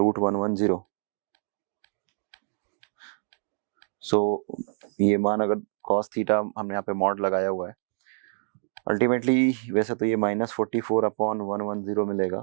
सो ये मान अगर cos थीटा हमने यहाँ पे मॉड लगाया हुआ है, अल्टीमेटली वैसे तो ये -44 अपॉन 110 मिलेगा।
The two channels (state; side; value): silent; left; digital silence